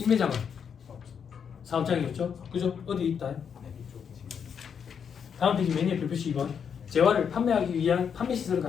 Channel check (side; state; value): right; quieter; 7.2 dB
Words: 사업장이었죠. 그죠? 어디 있다? 다음 페이지 메뉴 별표시 2번. 재화를 판매하기 위한 판매 시설을